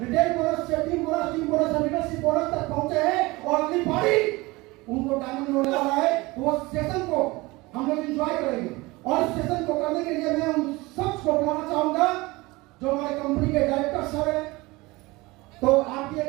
रिटेल बोनस से टीम बोनस और लीडरशिप बोनस तक पहुंचे हैं और अगली बारी उनको डायमंड होने वाला है। तो वो सेशन को हम लोग एंजॉय करेंगे और इस सेशन को करने के लिए मैं उन सबको बुलाना चाहूंगा जो हमारे कंपनी के डायरेक्टर सर हैं। तो आपकी एक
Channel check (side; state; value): left; quieter; 22.2 dB